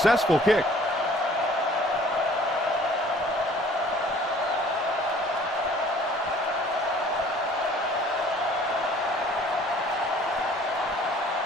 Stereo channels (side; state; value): both; normal; correlation 0.53